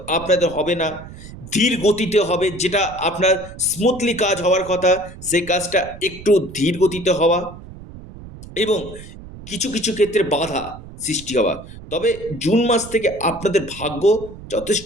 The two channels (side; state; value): right; noise; rumble, 15 dB below the sound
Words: আপনাদের হবে না, ধীর গতিতে হবে। যেটা আপনার স্মুথলি কাজ হওয়ার কথা, সেই কাজটা একটু ধীর গতিতে হওয়া এবং কিছু ক্ষেত্রে বাধা সৃষ্টি হওয়া। তবে জুন মাস থেকে আপনাদের ভাগ্য যথেষ্ট